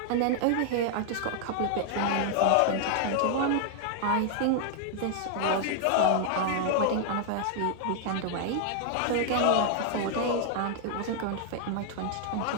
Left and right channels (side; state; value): both; different; correlation 0.00